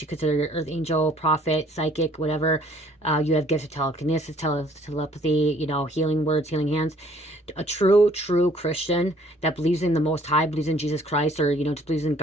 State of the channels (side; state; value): both; normal; correlation 0.59